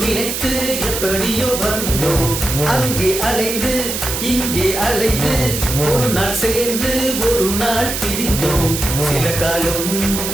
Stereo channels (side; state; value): right; noise; hiss, 3 dB below the sound